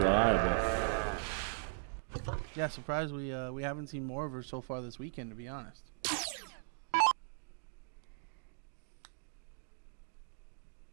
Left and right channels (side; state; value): left; silent; digital silence